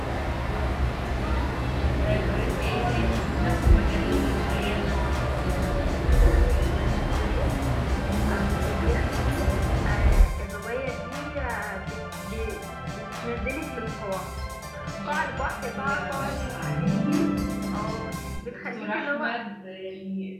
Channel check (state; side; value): identical; both; correlation 1.00